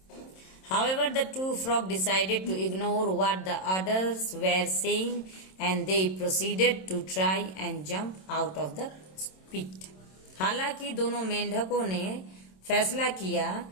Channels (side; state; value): right; late; 27 ms